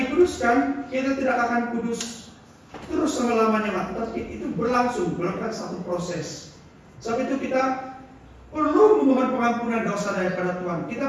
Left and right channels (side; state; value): both; identical; correlation 1.00